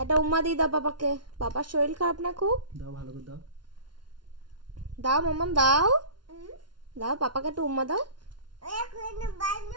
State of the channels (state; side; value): late; left; 0.71 ms